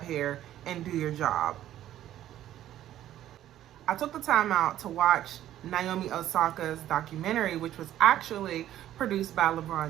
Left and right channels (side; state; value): left; quieter; 12.5 dB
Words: here and do your job. I took the time out to watch Naomi Osaka's documentary, which was actually produced by